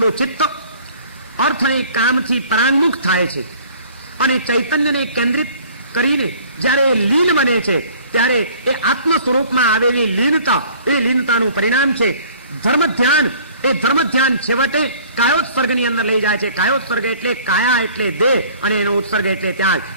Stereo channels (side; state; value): both; inverted; correlation -0.51